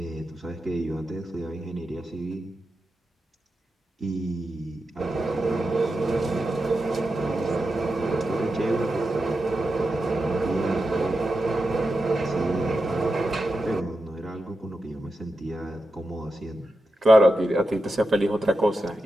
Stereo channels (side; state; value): both; normal; correlation 0.89